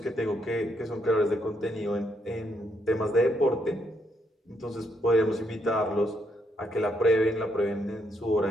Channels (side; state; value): both; normal; correlation 0.76